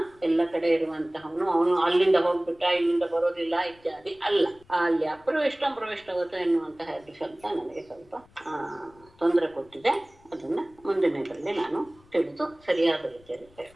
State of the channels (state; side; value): noise; left; rumble, 28 dB below the sound